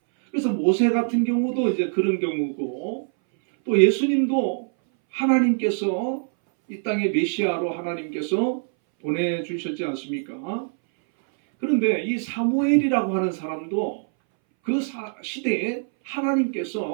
그래서 모세 같은 경우도 이제 그런 경우고 또 예수님도 하나님께서 이 땅의 메시아로 하나님께서 보내주셨지 않습니까? 그런데 이 사무엘이라고 하는 사람도 그 시대에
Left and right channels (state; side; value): silent; left; 61 dB below the other